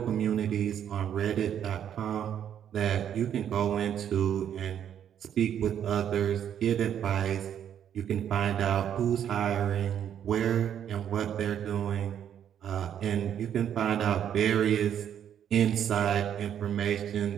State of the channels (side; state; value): left; quieter; 9.4 dB